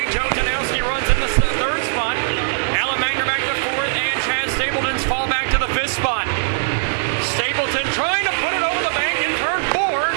Joe Janowski runs in the 3rd spot. Alan Magner back to 4th, and Chad Stapleton's fall back to the 5th spot. Stapleton trying to put it over the bank in turn 4,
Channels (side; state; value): left; silent; digital silence